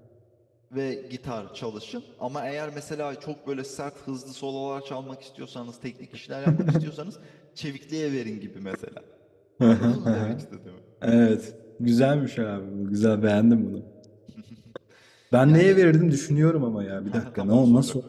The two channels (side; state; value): both; identical; correlation 1.00